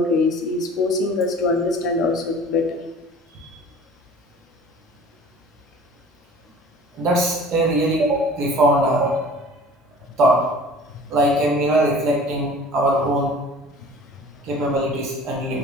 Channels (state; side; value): normal; both; correlation 0.45